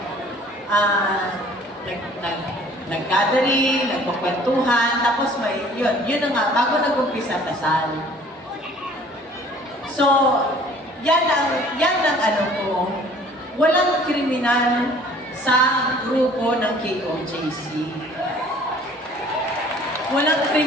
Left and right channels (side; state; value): both; normal; correlation 0.53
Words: Nag-gathering, nagpapwentuhan, tapos may, yun na nga, bago nag-umpisa kasal. So, yan ang ko, walang kriminal sa grupo ng KOJC. Walang